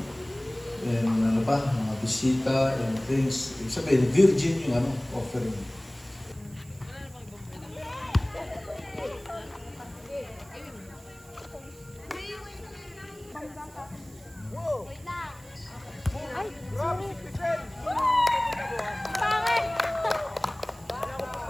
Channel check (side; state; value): right; noise; hiss, 24 dB below the sound